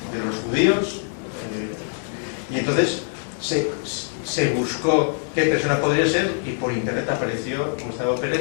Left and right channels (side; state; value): right; silent; 63 dB below the other